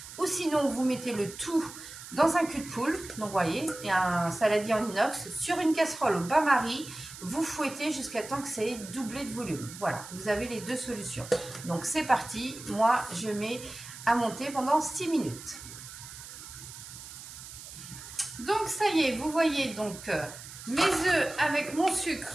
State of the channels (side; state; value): right; noise; hiss, 14 dB below the sound